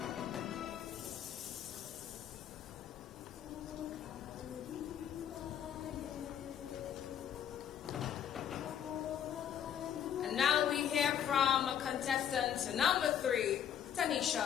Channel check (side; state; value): right; quieter; 9.4 dB